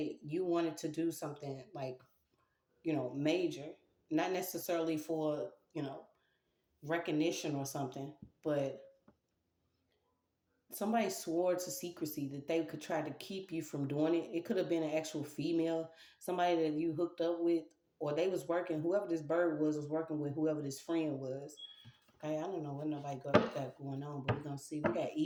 you wanted to do something like, major, not necessarily for, recognition or something, but somebody swore to secrecy that they could try to keep you from doing it. It could have been an actual female, somebody that you hooked up with, or they was working, whoever this bird was working with whoever this friend was. Okay, I don't know what nobody got going on, but we're gonna see. We got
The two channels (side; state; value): both; identical; correlation 1.00